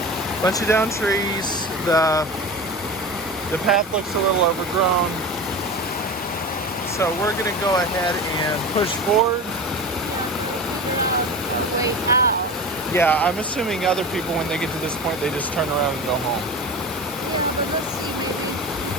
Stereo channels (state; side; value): normal; both; correlation 0.29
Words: The path looks a little overgrown. So we're gonna go ahead and push forward. A way out. Yeah, I'm assuming other people, when they get to this point, they just turn around and go home. Yeah, but let's see, maybe